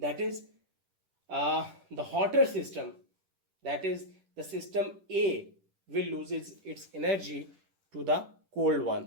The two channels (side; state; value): left; late; 10 ms